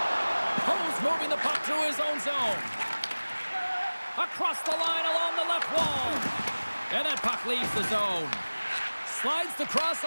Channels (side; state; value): both; inverted; correlation -1.00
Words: Hose moving the puck through his own zone. Across the line along the left wall. And that puck leaves the zone. Slides the